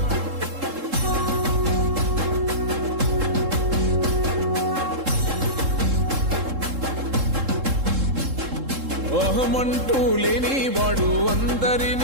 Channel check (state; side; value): late; left; 3.7 ms